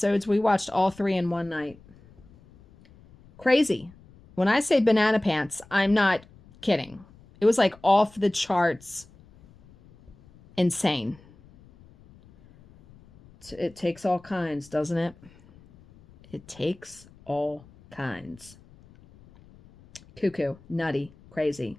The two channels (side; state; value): left; noise; rumble, 25 dB below the sound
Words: We watched all 3 in one night. Crazy. When I say banana pants, I'm not kidding. It was like off the charts. Insane. It takes all kinds, doesn't it? It takes all kinds. Cuckoo, nutty, crazy.